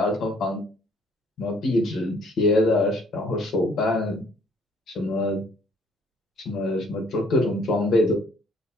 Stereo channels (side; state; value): both; normal; correlation 0.61